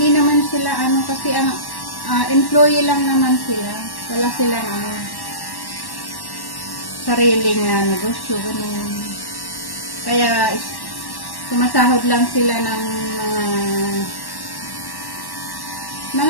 naman sila kasi ang employee lang naman sila. Wala silang sariling negosyo, ganun. Kaya sumasahod lang sila ng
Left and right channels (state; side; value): late; right; 1.1 ms